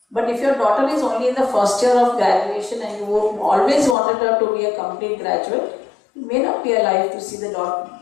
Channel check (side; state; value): right; drops out; at 4.0 s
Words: But if your daughter is only in the first year of graduation and you always wanted her to be a complete graduate, you may not be alive to see the